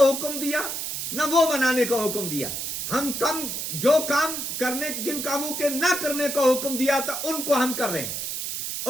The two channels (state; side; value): noise; right; hiss, 4 dB below the sound